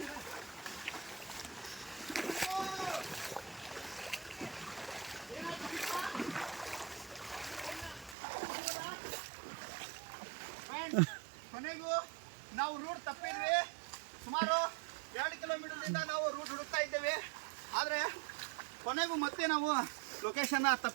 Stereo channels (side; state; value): left; drops out; at 8.2 s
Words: ಕೊನೆಗೂ ನಾವು ರೂಟ್ ತಪ್ಪಿದ್ವಿ. ಸುಮಾರು 2 ಕಿಲೋಮೀಟರ್ದಿಂದ ನಾವು ರೂಟ್ ಹುಡುಕ್ತಾ ಇದ್ದೇವೆ. ಆದರೆ ಕೊನೆಗೂ ಮತ್ತೆ ನಾವು ಲೊಕೇಶನ್ನ